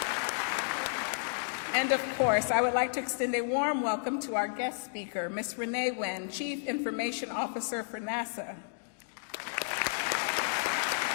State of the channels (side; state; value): right; silent; digital silence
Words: And of course, I would like to extend a warm welcome to our guest speaker, Ms. Renee Wynn, Chief Information Officer for NASA.